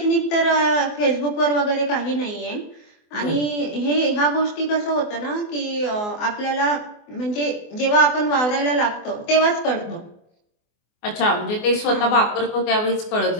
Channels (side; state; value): right; late; 24 ms